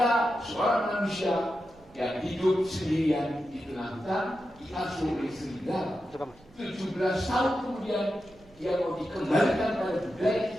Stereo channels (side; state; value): right; noise; rumble, 26 dB below the sound